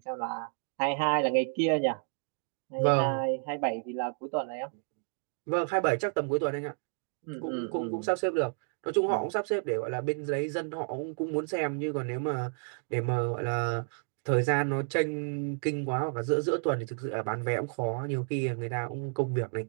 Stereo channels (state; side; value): silent; left; 57 dB below the other